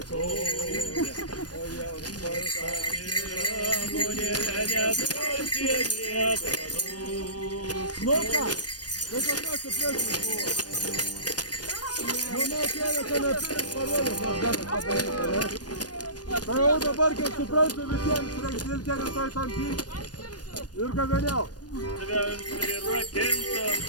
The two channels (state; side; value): late; right; 0.69 ms